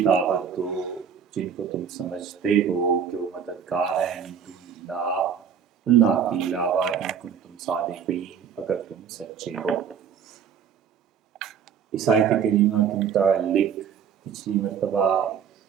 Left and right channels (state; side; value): quieter; left; 7.6 dB